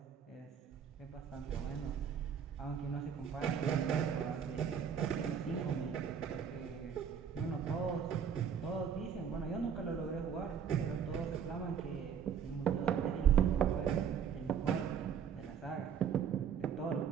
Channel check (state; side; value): quieter; left; 7.6 dB